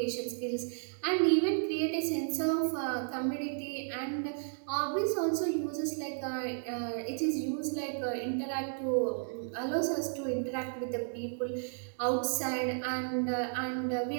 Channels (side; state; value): left; silent; digital silence